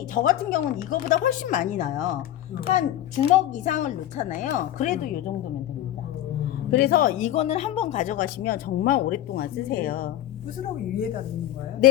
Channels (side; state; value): right; quieter; 12.8 dB